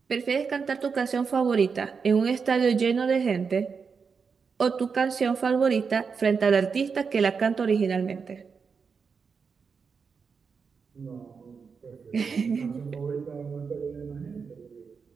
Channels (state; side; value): quieter; left; 5.6 dB